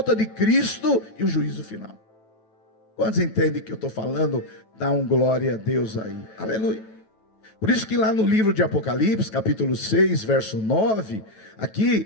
de Cristo e o juízo final. Quantos entendem que eu estou falando? Dá um glória a Deus aí, aleluia. Por isso que lá no livro de Apocalipse, capítulo 6, verso 9,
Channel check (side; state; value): right; late; 9.2 ms